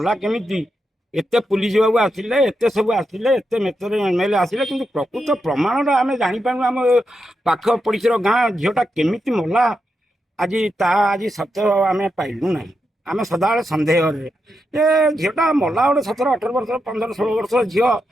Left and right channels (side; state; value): both; normal; correlation 0.85